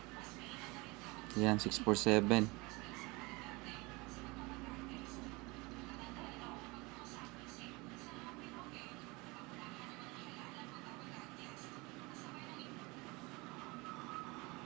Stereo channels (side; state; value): left; quieter; 25.0 dB